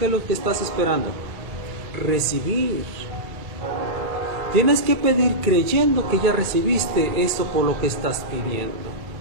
es lo que estás esperando? Recibir. Tienes que pedir creyendo que ya recibiste eso por lo que estás pidiendo.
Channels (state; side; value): late; left; 2.3 ms